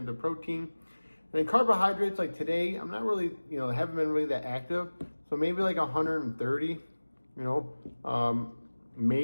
of protein. And then carbohydrates, like today, I'm not really, haven't been really that active. So maybe like 130,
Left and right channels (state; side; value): inverted; both; correlation -1.00